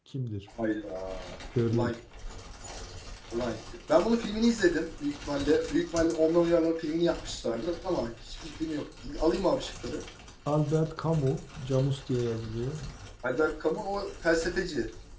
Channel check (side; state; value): both; identical; correlation 1.00